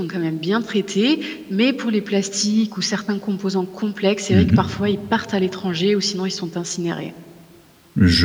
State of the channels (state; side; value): identical; both; correlation 1.00